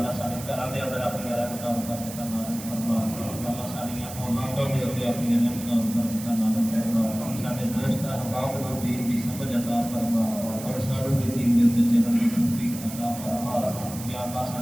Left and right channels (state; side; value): noise; right; hiss, 12 dB below the sound